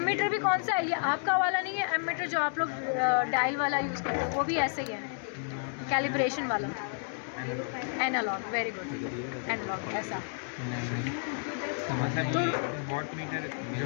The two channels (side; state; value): right; silent; 57 dB below the other